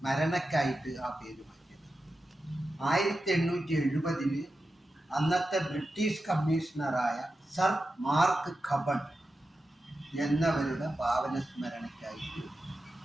ആ പേര് മാറ്റിയത്. 1870 അന്നത്തെ ബ്രിട്ടീഷ് കമ്മീഷണറായ സർ മാർക്ക് കബൺ എന്നവരുടെ പാവന സ്മരണയ്ക്കായിട്ട്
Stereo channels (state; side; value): normal; both; correlation 0.91